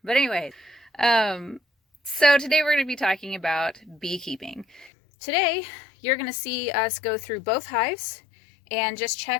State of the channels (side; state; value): right; drops out; at 4.9 s